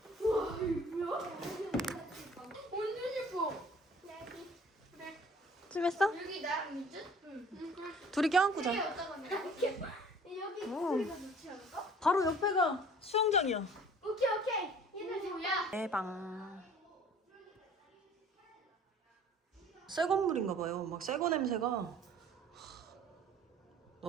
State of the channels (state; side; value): normal; both; correlation 0.50